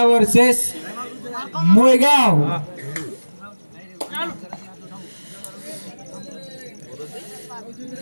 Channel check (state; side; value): inverted; both; correlation -1.00